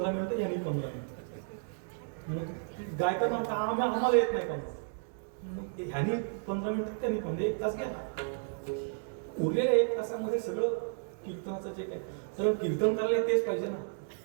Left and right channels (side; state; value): left; silent; digital silence